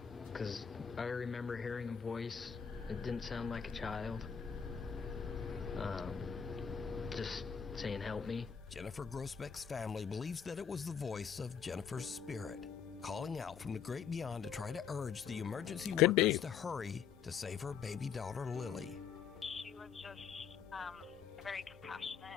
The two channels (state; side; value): quieter; right; 7.2 dB